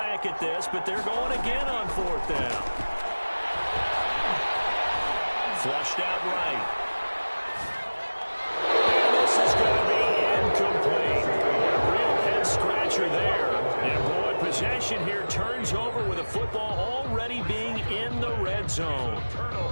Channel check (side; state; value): both; inverted; correlation -1.00